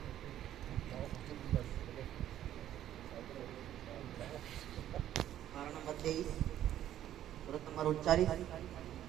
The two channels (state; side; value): quieter; left; 11.8 dB